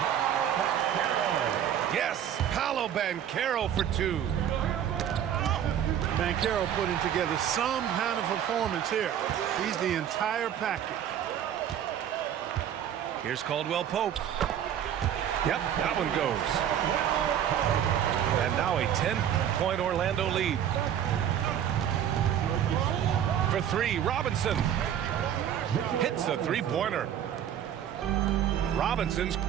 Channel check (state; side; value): quieter; left; 9.8 dB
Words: Yes, Paolo Banchero for 2. Banchero putting together some kind of performance here. He's the entire package. Here's Caldwell Pope. Yep, that one goes. And now a 10-point Orlando lead. For 3, Robinson. Hits a three-pointer. Robinson's